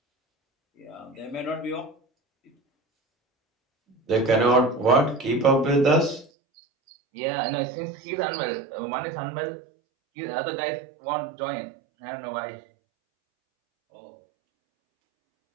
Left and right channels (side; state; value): left; drops out; at 6.2 s